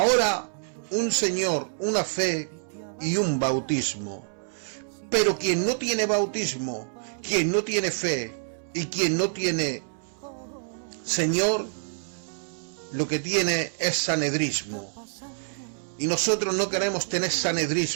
un Señor, una fe y un bautismo. Pero quien no tiene bautismo, quien no tiene fe y quien no tiene Señor, lo que tiene es sanedrismo. Y nosotros no queremos tener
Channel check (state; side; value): silent; left; 60 dB below the other